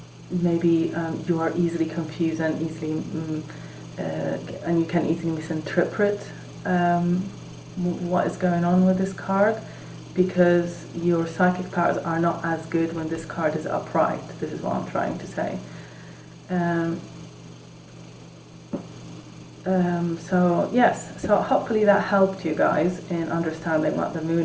maybe you are easily confused and easily and you can easily misinterpret what is going on with this card, because your psychic powers are not as good when this card is upright. This is what I'm trying to say. So yes, so hopefully that helped you guys in understanding what the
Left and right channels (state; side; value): identical; both; correlation 1.00